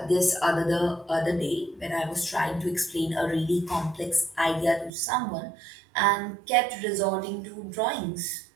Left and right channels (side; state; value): left; drops out; at 4.9 s